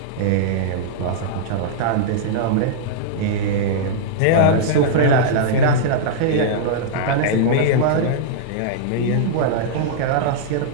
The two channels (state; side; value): different; both; correlation -0.02